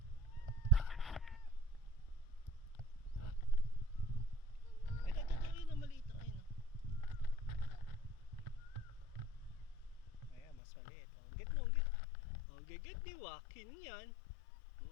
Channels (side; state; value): right; drops out; at 10.6 s